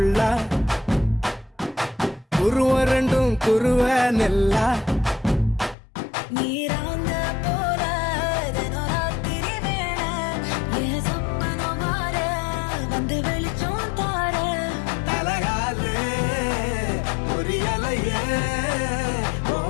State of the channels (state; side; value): drops out; right; at 5.8 s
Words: குருவ ரெண்டும் குருவ நெல்லா நீராங்க போல தினராத்திரி வேண என் சொப்பனம் மாற வந்து வெளிச்சம் தார தலகாலே பொரியலையே